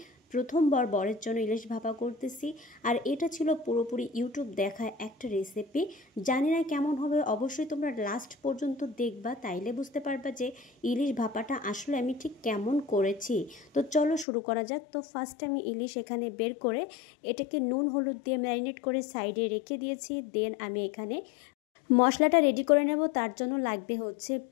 প্রথমবার বরের জন্য ইলিশ ভাপা করতেছি। আর এটা ছিল পুরোপুরি ইউটিউব দেখা একটা রেসিপি। জানি না কেমন হবে, অবশ্যই তোমরা লাস্ট পর্যন্ত দেখবা, তাইলে বুঝতে পারবা যে ইলিশ ভাপাটা আসলে আমি ঠিক কেমন করেছি। তো চলো শুরু করা যাক। তো ফার্স্ট আমি ইলিশ এখানে বের করে এটাকে নুন হলুদ দিয়ে ম্যারিনেট করে সাইডে রেখে দিয়েছি। দেন আমি এখানে মশলাটা রেডি করে নেব। তার জন্য লাগবে হচ্ছে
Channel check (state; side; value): drops out; right; at 14.2 s